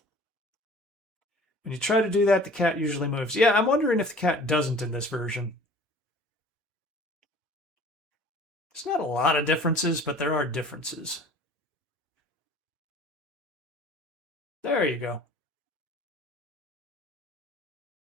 When you try to do that, the cat usually moves. Yeah, I'm wondering if the cat doesn't in this version. There's not a lot of differences, but there are differences. There you go.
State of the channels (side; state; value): both; normal; correlation 0.48